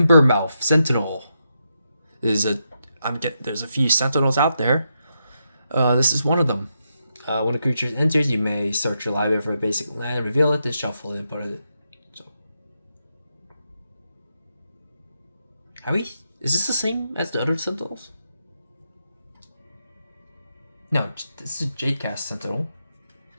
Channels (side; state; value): both; inverted; correlation -0.84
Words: Sentinel. There's a few Sentinels out there. This is one of them. When a creature enters, you may search your library for a basic land, reveal it, then shuffle it, and put it. So, is this the same as the other Sentinels? No, this is a Jadecast Sentinel.